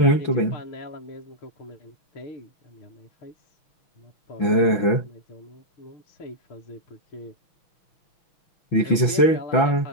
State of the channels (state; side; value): late; right; 6.0 ms